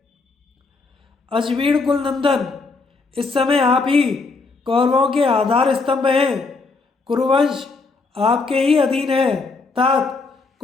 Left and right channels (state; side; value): quieter; right; 4.0 dB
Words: अजवीण कुल नंदन, इस समय आप ही कौरवों के आधार स्तंभ हैं। कुरुवंश आपके ही अधीन है। तात,